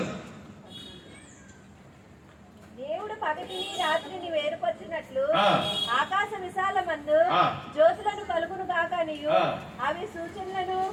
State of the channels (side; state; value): both; identical; correlation 1.00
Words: దేవుడు పగటిని రాత్రిని వేరుపరిచినట్లు ఆకాశ విశాలమందు జ్యోతులను కలుగును గాకనియు అవి సూచనలను